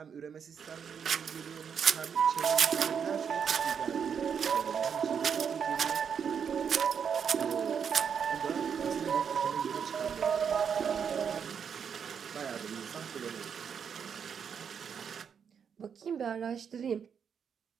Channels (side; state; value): left; quieter; 7.2 dB